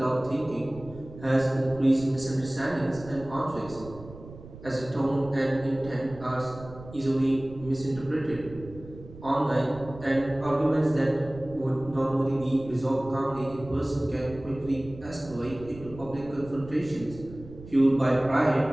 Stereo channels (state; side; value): noise; right; rumble, 16 dB below the sound